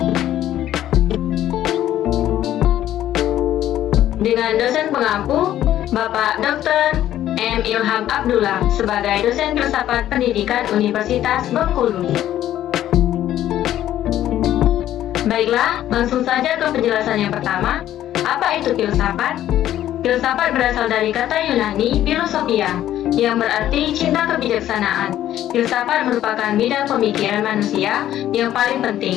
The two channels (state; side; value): quieter; right; 12.3 dB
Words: Dengan dosen pengampu Bapak Dr. M. Ilham Abdullah sebagai dosen filsafat pendidikan Universitas Bengkulu. Baiklah, langsung saja ke penjelasan yang pertama. Apa itu filsafat? Filsafat berasal dari kata Yunani philosophia, yang berarti cinta kebijaksanaan. Filsafat merupakan bidang pemikiran manusia yang paling penting,